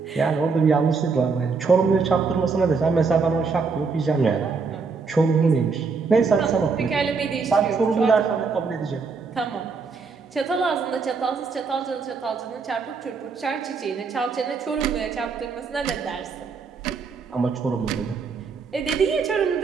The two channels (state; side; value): quieter; left; 4.9 dB